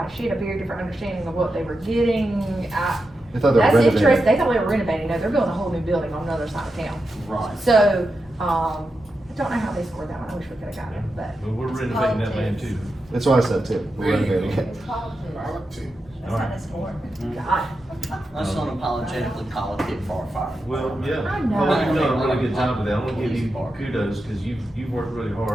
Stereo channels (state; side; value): normal; both; correlation 0.89